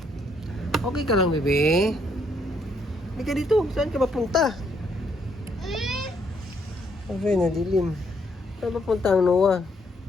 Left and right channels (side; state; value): both; normal; correlation 0.71